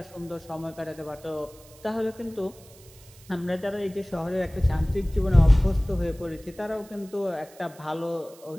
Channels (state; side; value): noise; right; hiss, 23 dB below the sound